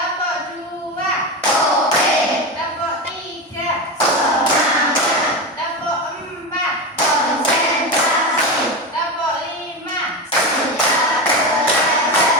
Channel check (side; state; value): both; normal; correlation 0.19